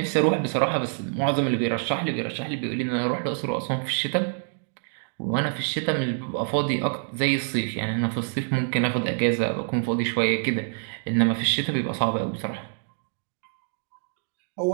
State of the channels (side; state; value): left; silent; digital silence